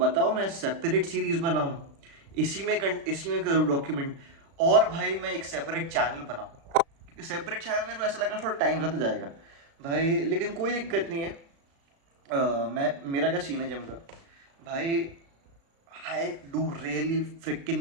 मैं separate series बनाऊँ, इसी में करूँ document. और भाई मैं एक सेपरेट चैनल बनाऊँ, क्योंकि सेपरेट चैनल मेरे को ऐसा लगा थोड़ा टाइम ज़्यादा जाएगा भाई. लेकिन कोई दिक्कत नहीं है. मेरा क्या सीन है जिम का भाई. I do really fricking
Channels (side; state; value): left; late; 36 ms